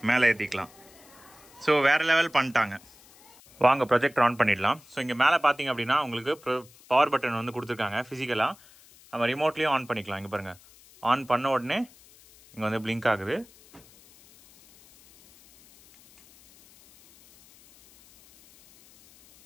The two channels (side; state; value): left; noise; hiss, 25 dB below the sound